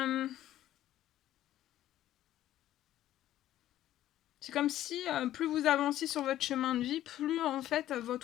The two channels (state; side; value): quieter; right; 13.0 dB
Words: C'est comme si plus vous avanciez sur votre chemin de vie, plus en fait